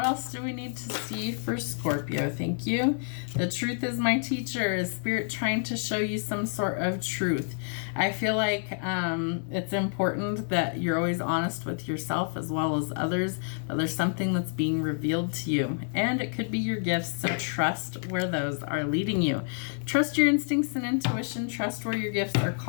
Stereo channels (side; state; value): right; silent; 59 dB below the other